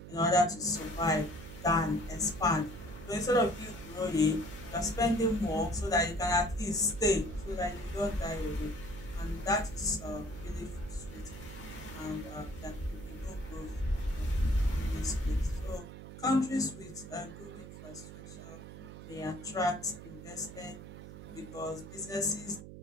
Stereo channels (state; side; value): noise; right; hum, 13 dB below the sound